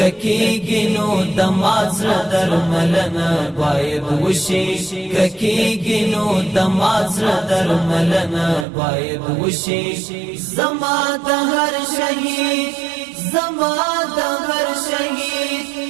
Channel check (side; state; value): left; drops out; at 8.7 s